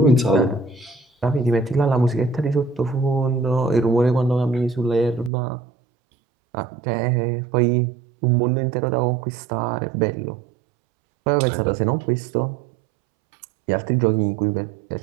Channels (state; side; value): drops out; left; at 5.3 s